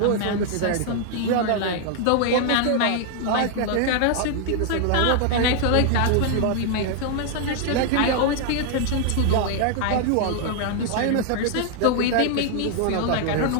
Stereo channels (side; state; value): both; different; correlation 0.00